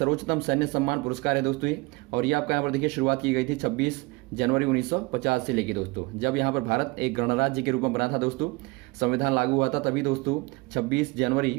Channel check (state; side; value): quieter; left; 24.6 dB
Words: सैन्य सम्मान पुरस्कार है दोस्तों ये। और ये आपका यहाँ पर देखिए शुरुआत की गई थी 26 जनवरी 1950 से लेके दोस्तों, जब यहाँ पर भारत एक गणराज्य के रूप में बना था दोस्तों, संविधान लागू हुआ था तभी दोस्तों 26 जनवरी